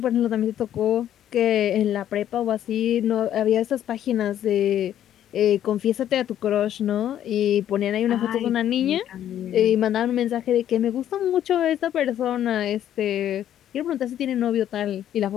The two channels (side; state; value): right; quieter; 11.0 dB